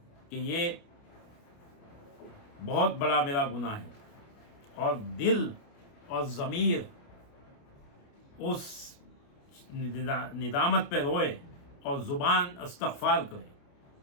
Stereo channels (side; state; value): right; late; 29 ms